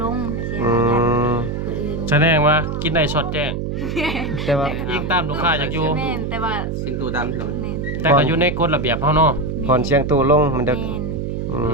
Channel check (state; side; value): noise; right; hum, 3 dB below the sound